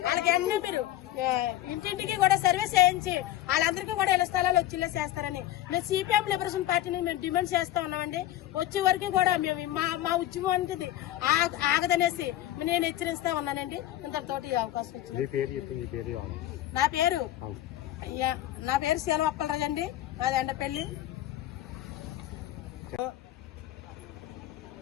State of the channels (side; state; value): right; quieter; 13.8 dB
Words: వాళ్ళకి అన్ని మీరు ఇంటింటికి కూడా సర్వీస్ చేయించి వాళ్ళందరికీ కూడా ఇళ్ల స్థలాలు వచ్చేలా చేస్తారని మేము సిపిఎం లిబరేషన్ పార్టీని మేము డిమాండ్ చేస్తా ఉన్నామండి. వచ్చే వరకు కూడా మేము మా ఉద్యమానికి ఆగదనేసి నేను హెచ్చరిస్తా ఉన్నానండి. ఇంతతోటి అవకాశం వచ్చింది. నా పేరు శీలవప్పలరాజు అండి, మాది ఎండపల్లి.